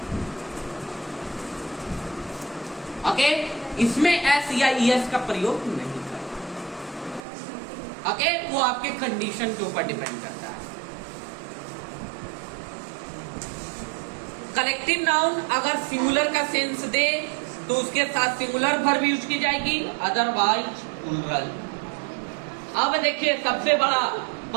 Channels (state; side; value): drops out; left; at 7.2 s